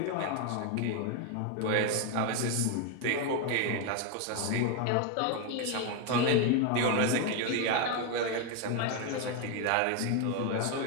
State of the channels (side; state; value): both; different; correlation 0.01